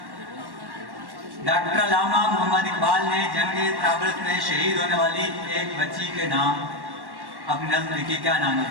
डॉक्टर अल्लामा मोहम्मद इकबाल ने जंगे त्राबलस में शहीद होने वाली एक बच्ची के नाम अपनी नज़्म लिखी। क्या नाम है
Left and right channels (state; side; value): late; left; 1.1 ms